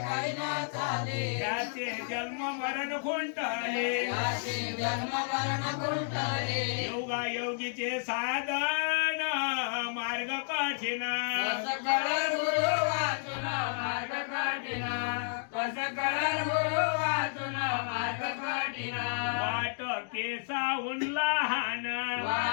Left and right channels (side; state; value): right; silent; digital silence